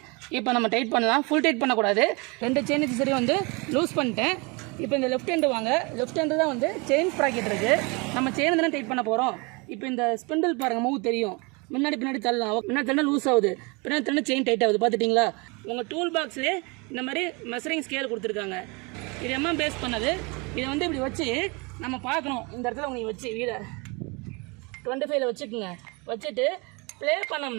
இப்போ நம்ம டைட் பண்ணலாம். ஃபுல் டைட் பண்ணக்கூடாது. 2 செயின் சரி வந்து லூஸ் பண்ணிட்டேன். இப்போ இந்த லெஃப்ட் ஹேண்டு வாங்க. லெஃப்ட் ஹேண்டு தான் வந்து செயின் ப்ராக்கெட் இருக்குது. நம்ம செயின் தானே டைட் பண்ண போகிறோம். இப்போ இந்த ஸ்பிண்டில் பாருங்கள், மூவ் தெரியும். முன்னாடி பின்னாடி தள்ளலாம். முன்னாடி தள்ளா லூஸ் ஆகுது, பின்னாடி தள்ளா செயின் டைட் ஆகுது. பார்த்துட்டிங்களா? உங்கள் டூல் பாக்ஸ்லேயே இந்த மாதிரி மெஷரிங் ஸ்கேல் கொடுத்துருக்காங்க. இது எம்எம் பேஸ் பண்ணது. இதை வந்து இப்படி வச்சு நம்ம பார்க்கணும். இந்த இடத்துல நீங்கள் வச்சு வீலை 25ல் வச்சுக்கோங்க. வச்சுட்டு ப்ளே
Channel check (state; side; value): quieter; left; 28.9 dB